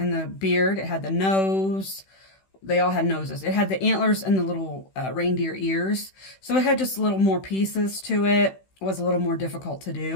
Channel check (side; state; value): right; late; 16 ms